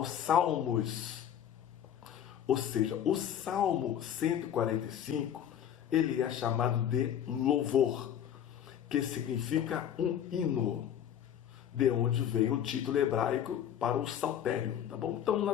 Salmos. Ou seja, o Salmo 145, ele é chamado de louvor, que significa um hino, de onde vem o título hebraico para o saltério, tá bom? Então,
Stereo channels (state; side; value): quieter; right; 9.8 dB